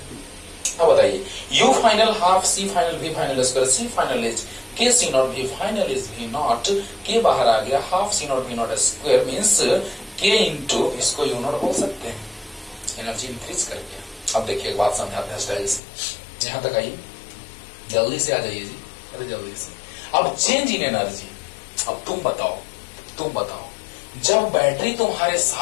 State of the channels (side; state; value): right; drops out; at 15.8 s